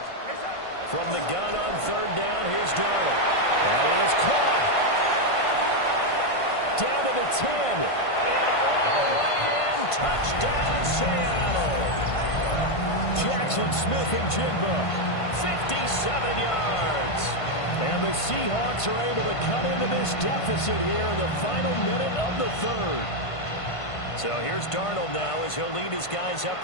From the gun on third down, here's Darnold. And it is caught. Down to the 10. And all the way in. Touchdown, Seattle. Jackson Smith and Jigba. 57 yards. And the Seahawks are able to cut into this deficit here in the final minute of the third. So here's Darnold now as he'll lead his guys up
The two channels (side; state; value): right; late; 1.5 ms